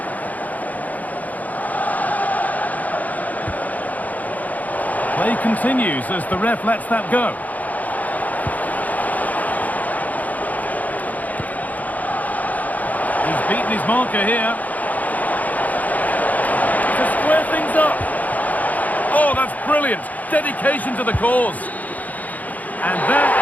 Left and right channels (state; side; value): late; right; 0.078 ms